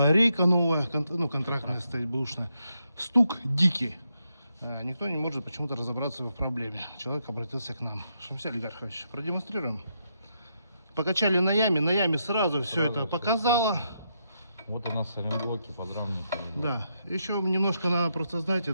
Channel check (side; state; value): both; inverted; correlation -0.80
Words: рейка новая, контрактная стоит бэушная. Стук дикий. Никто не может почему-то разобраться в проблеме. Человек обратился к нам. Шамиль Ильгархович, продемонстрируем. Покачали на яме сразу все это показало. Вот у нас сайлентблоки, подрамники. Да, еще немножко надо просто знать